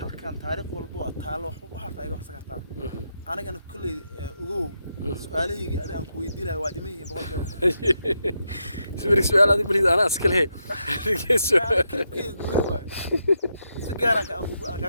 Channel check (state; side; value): inverted; both; correlation -0.83